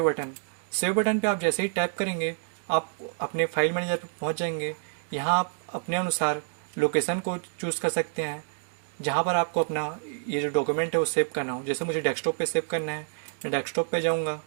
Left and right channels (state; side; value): silent; left; digital silence